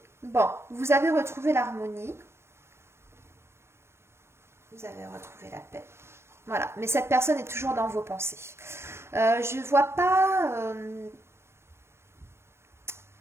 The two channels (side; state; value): left; late; 0.12 ms